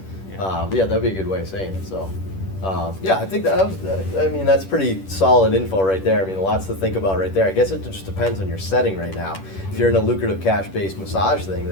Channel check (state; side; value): late; right; 10 ms